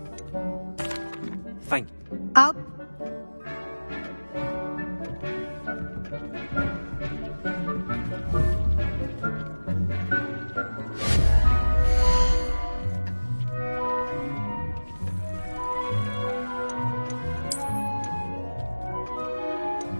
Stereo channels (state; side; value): inverted; both; correlation -1.00